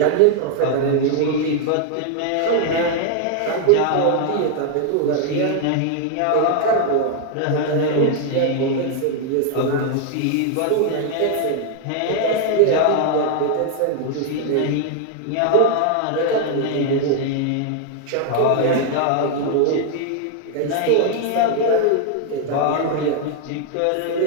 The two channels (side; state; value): both; different; correlation 0.00